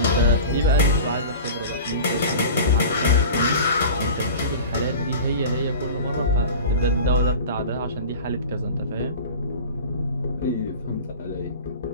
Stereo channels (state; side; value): inverted; both; correlation -0.35